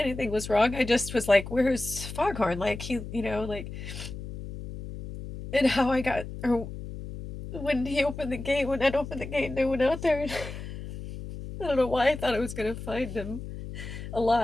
was wrong. I just was like, "Where's Foghorn?" Like like, and how I got, or when he opened the gate, when Ed opened the gate, and I went out there, and I don't know why I thought I was gonna find him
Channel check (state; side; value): noise; left; hum, 10 dB below the sound